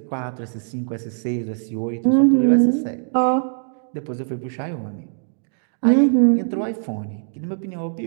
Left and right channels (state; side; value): silent; left; digital silence